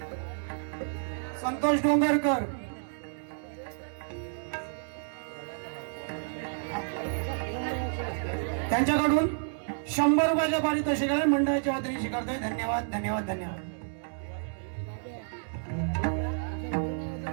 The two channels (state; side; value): silent; left; digital silence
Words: संतोष डोंगरकर त्यांच्याकडून 100 रुपयाचे पारितोषिक आहे, मंडळाच्या वतीने स्वीकारतोय. धन्यवाद धन्यवाद धन्यवाद.